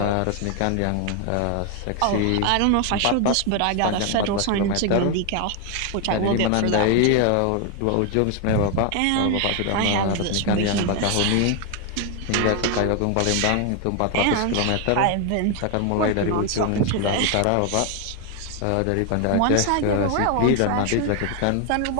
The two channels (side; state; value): both; different; correlation 0.01